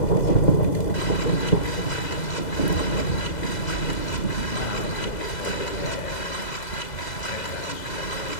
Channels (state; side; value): late; right; 2.0 ms